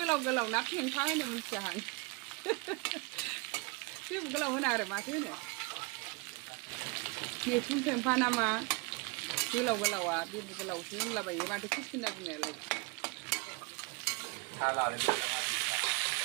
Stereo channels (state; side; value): quieter; left; 29.3 dB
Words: गोलाव ना फेंफा होनो मिथिया आं बे गोलाव होना आरो माथो होनो मैखुन फेंफा नामा गोलाव गोलावा बे गोलावसो होनलाबायो माथो कुकिना बुंनायालाय